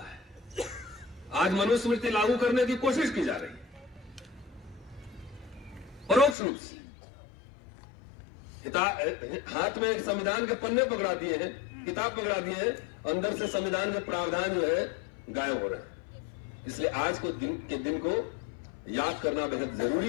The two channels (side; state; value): right; drops out; at 6.4 s